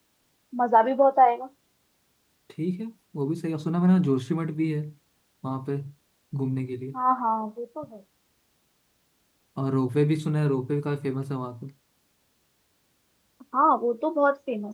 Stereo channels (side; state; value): both; identical; correlation 1.00